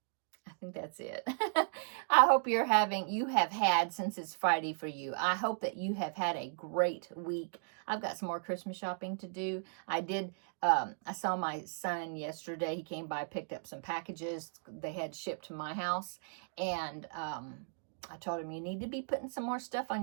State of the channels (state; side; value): silent; left; digital silence